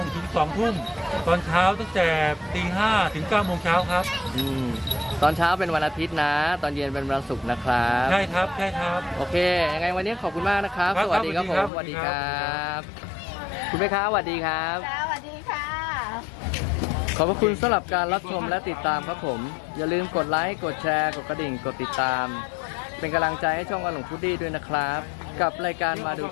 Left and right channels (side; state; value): right; drops out; at 11.7 s